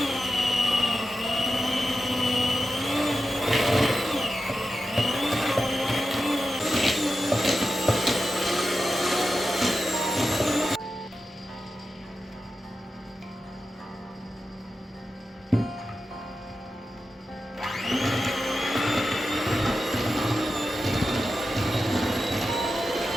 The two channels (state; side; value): normal; both; correlation 0.91